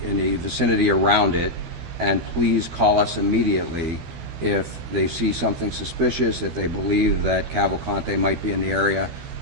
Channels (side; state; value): left; late; 12 ms